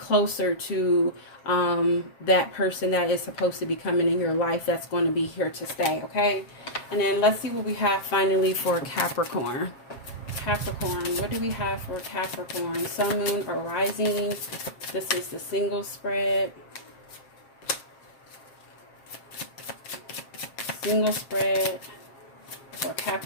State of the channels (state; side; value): late; right; 7.5 ms